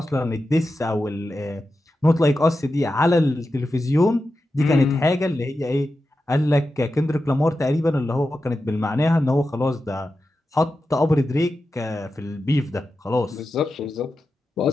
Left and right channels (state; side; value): normal; both; correlation 0.91